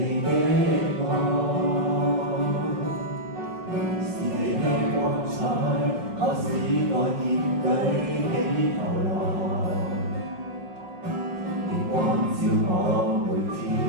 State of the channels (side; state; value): left; late; 5.4 ms